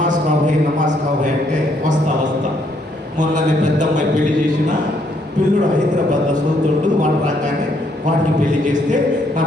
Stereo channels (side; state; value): both; normal; correlation 0.70